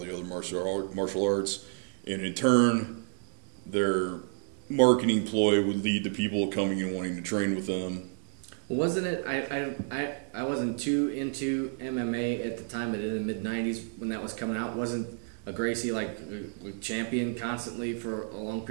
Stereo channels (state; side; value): silent; left; digital silence